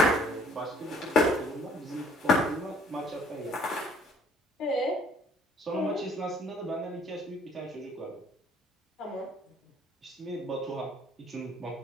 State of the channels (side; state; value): both; normal; correlation 0.59